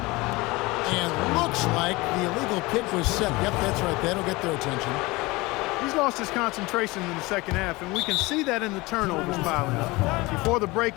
And looks like the illegal kick was set. Yep, that's right. That'll get their attention. He's lost his concentration in the second half, and we can see that in the turnovers piling up. Before the break,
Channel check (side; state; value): right; quieter; 22.5 dB